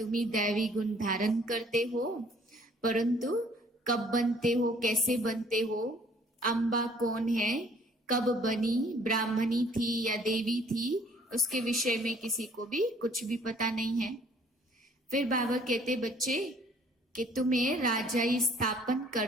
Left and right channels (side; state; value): both; normal; correlation 0.58